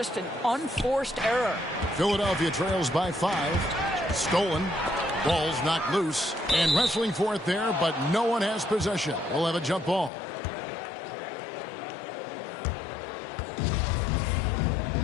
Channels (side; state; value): right; drops out; at 10.1 s